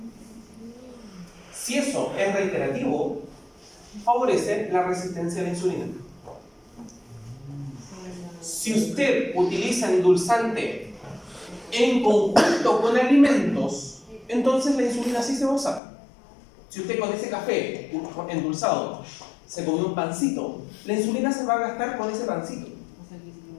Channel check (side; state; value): right; drops out; at 15.8 s